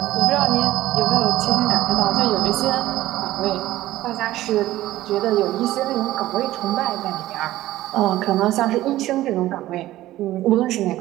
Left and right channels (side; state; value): left; quieter; 15.3 dB